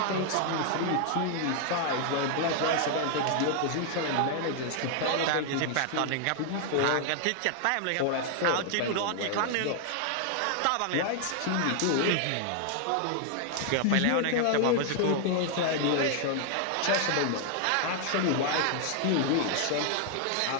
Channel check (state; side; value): different; both; correlation 0.00